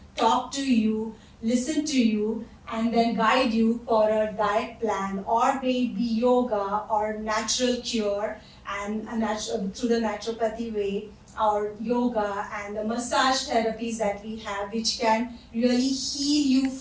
talk to you, listen to you, and then guide you for a diet plan, or maybe yoga or natural cure and through the naturopathy way, or yoga and the massage therapies that we have, which can really heal you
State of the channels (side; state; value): both; identical; correlation 1.00